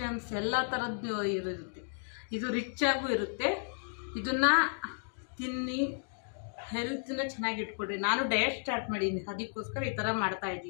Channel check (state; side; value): silent; right; digital silence